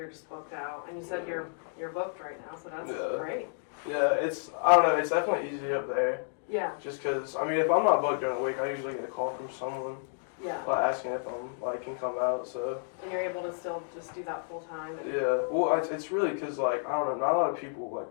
just booked out, and you said you're booked right now, so that's great. Yeah, it's I don't know, it's definitely easy up there. Yeah. Just because I mean, if I'm not booked during the week, I usually get a call from someone. Yeah. Asking if I'm like can come out, so. And you're able to still just do that full time. Yeah. Well, it's really because like I don't know, not a lot of people like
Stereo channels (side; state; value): right; silent; digital silence